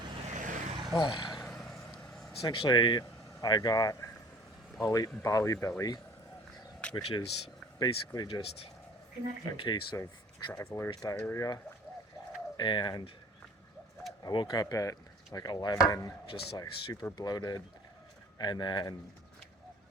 essentially, I got Bali belly, which is basically just a case of traveler's diarrhea. And I woke up at like 11, just like super bloated, and then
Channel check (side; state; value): both; normal; correlation 0.48